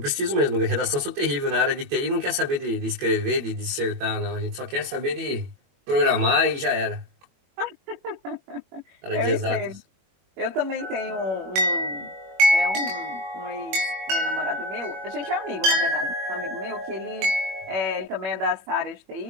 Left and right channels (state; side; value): late; left; 22 ms